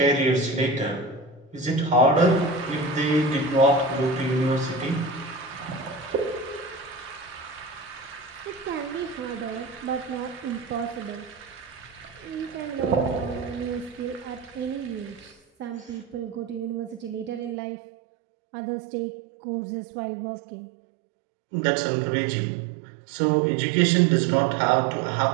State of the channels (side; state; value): left; drops out; at 17.6 s